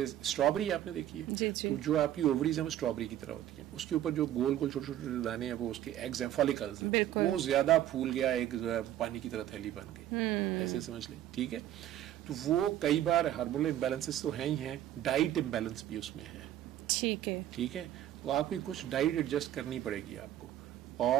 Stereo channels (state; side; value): quieter; left; 12.3 dB